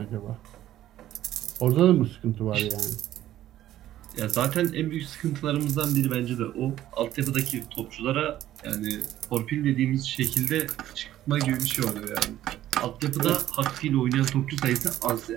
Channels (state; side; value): quieter; left; 13.1 dB